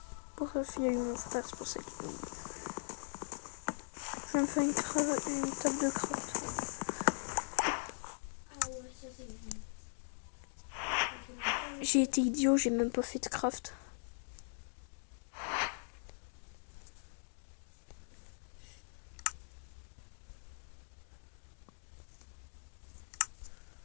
Pour ça, il y a eu mon frère, c'est pour ça qu'il... Je vais me faire une table de craft. J'ai été idiot, j'ai même pas fait de craft.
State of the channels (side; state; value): right; silent; digital silence